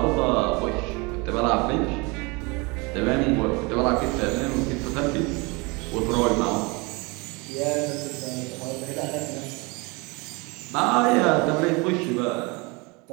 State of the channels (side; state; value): left; quieter; 27.7 dB